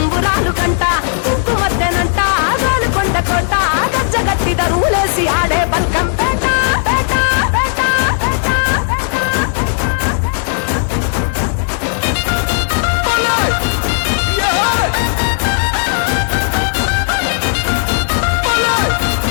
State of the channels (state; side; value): silent; right; digital silence